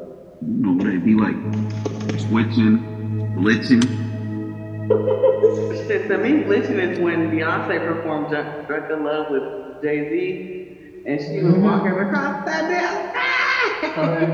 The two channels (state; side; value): identical; both; correlation 1.00